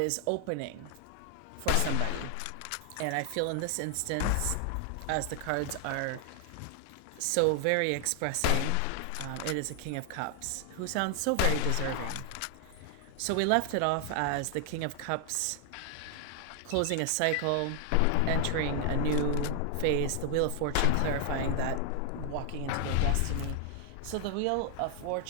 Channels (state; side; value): different; both; correlation 0.00